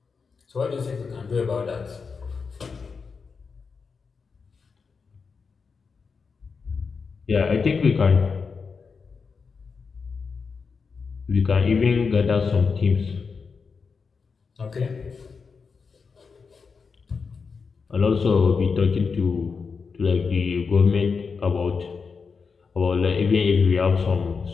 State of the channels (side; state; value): right; quieter; 5.2 dB